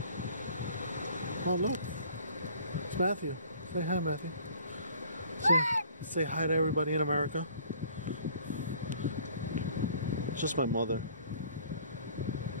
Oh, look. It's Matthew. Say hi, Matthew. Say hi to everybody in America. It's just my mother.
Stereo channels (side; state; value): both; inverted; correlation -0.53